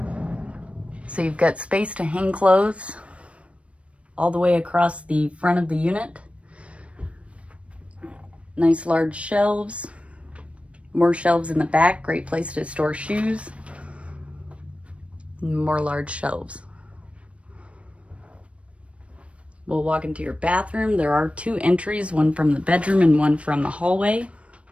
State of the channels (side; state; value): left; late; 0.062 ms